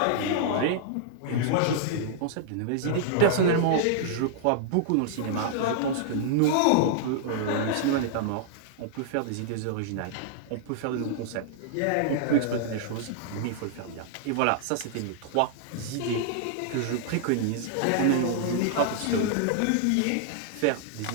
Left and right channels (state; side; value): different; both; correlation -0.01